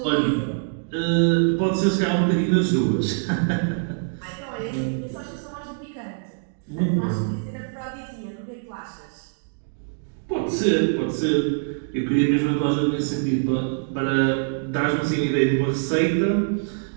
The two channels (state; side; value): silent; left; digital silence